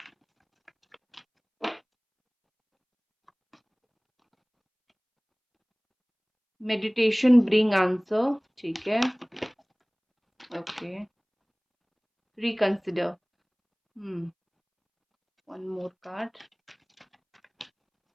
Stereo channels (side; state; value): both; identical; correlation 1.00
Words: मेडिटेशन ब्रिंग आंसर, ठीक है। Okay, reconsider, one more card.